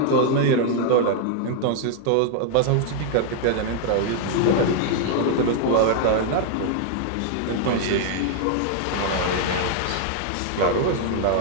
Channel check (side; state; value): both; different; correlation 0.00